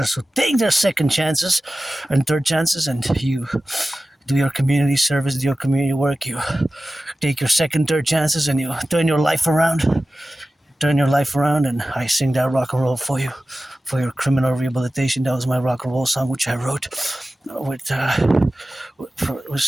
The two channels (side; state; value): both; normal; correlation 0.95